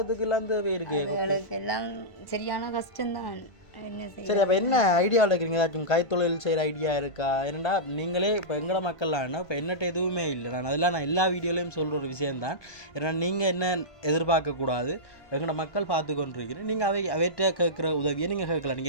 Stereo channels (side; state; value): right; late; 1.5 ms